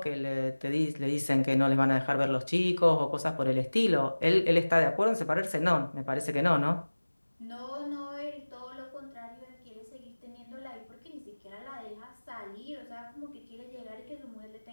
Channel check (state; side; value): inverted; both; correlation -1.00